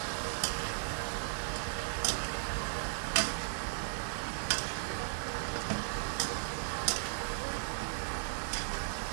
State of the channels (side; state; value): left; silent; 54 dB below the other